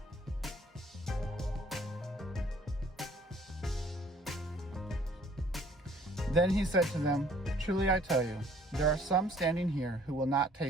Then he said to them, "Truly I tell you, there are some standing here who will not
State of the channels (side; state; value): both; normal; correlation 0.58